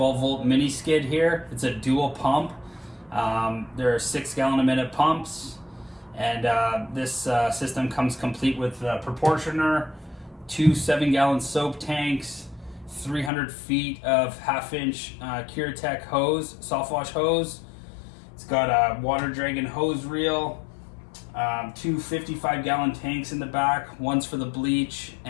volt mini skid here. It's a dual pump. There are 6 gallon a minute pumps, and this system comes complete with a proportioner, 2 7-gallon soap tanks, 300 feet of 1/2 inch Curetech hose, soft wash hose. It's got a water dragon hose reel, 2 55-gallon tanks in the back. One's for the bleach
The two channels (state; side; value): drops out; right; at 13.3 s